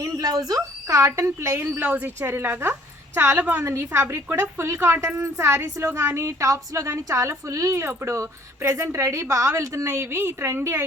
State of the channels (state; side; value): normal; both; correlation 0.58